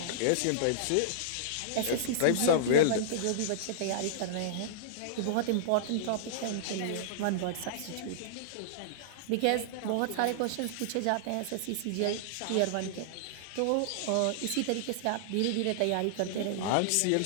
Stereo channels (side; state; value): both; different; correlation -0.02